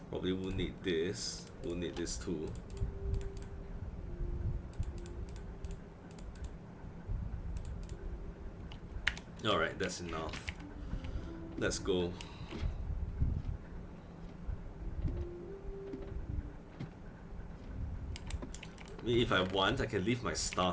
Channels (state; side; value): identical; both; correlation 1.00